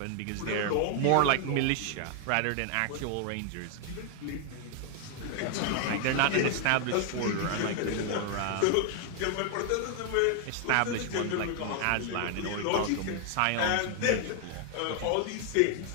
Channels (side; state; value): both; different; correlation 0.00